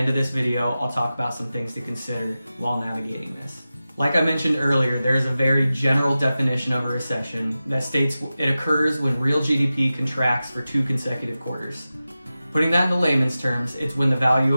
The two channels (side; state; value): both; inverted; correlation -0.94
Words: of this video, I'll talk about some things to consider while navigating this. Like I mentioned earlier, there is a very general definition of a recession that states it occurs when real GDP contracts for 2 consecutive quarters. Putting that into layman's terms, it's when the value